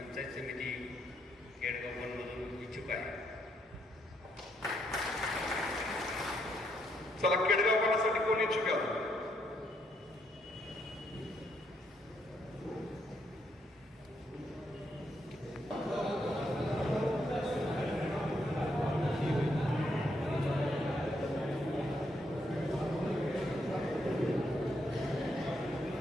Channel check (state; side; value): normal; both; correlation 0.76